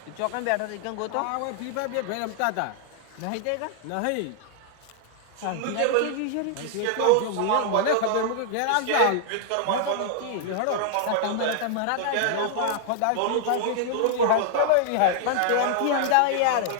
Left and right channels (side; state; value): both; different; correlation -0.01